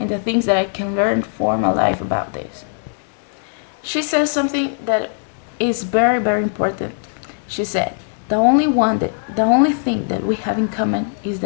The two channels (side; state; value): right; silent; digital silence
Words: the things that I can learn for my life about this. She says something that is very important. She said, the only thing that we have in common is